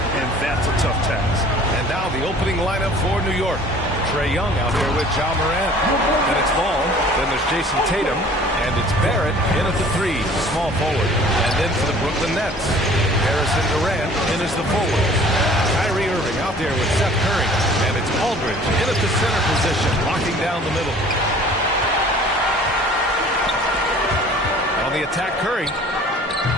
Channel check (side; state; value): both; normal; correlation 0.50